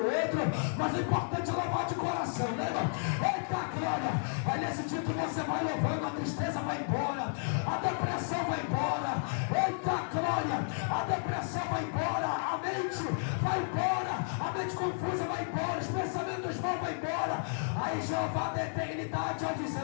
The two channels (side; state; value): right; silent; digital silence